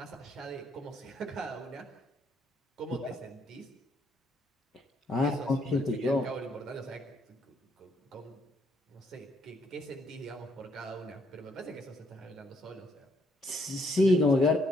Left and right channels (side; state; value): both; normal; correlation 0.71